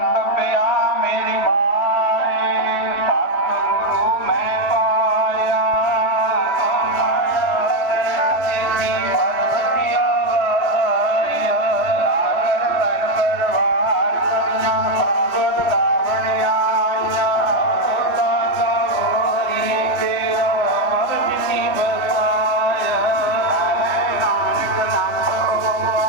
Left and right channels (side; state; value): right; late; 3.2 ms